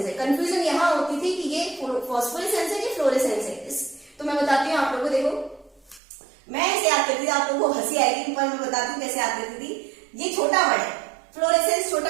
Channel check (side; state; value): left; drops out; at 6.0 s